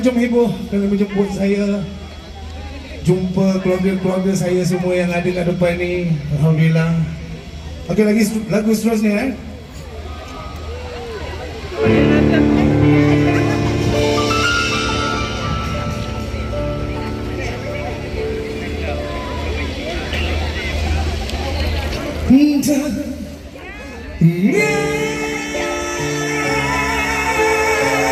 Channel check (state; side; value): identical; both; correlation 1.00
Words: Jom Heboh kerana menjemput saya. Jumpa keluarga-keluarga saya semua yang ada kat depan ni. Alhamdulillah. Okey, lagi lagu seterusnya